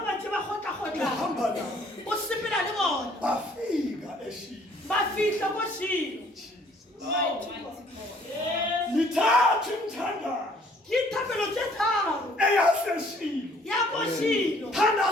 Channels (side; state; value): both; normal; correlation 0.60